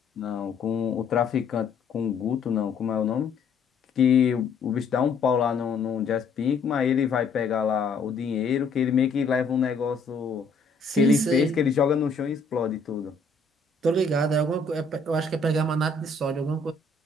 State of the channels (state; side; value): quieter; right; 4.0 dB